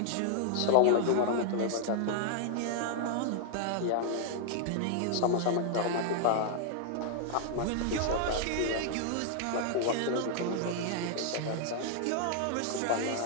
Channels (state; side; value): different; both; correlation -0.01